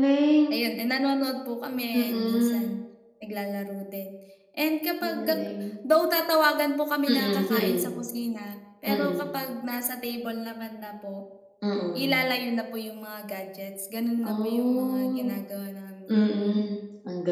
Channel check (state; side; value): identical; both; correlation 1.00